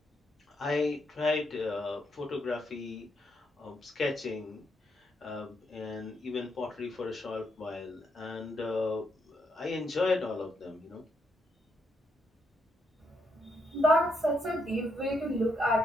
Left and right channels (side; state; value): both; normal; correlation 0.78